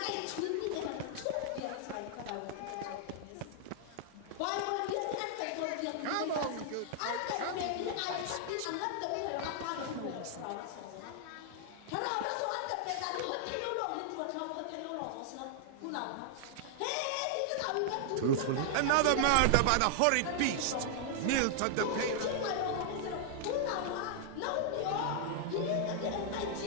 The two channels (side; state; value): both; different; correlation -0.01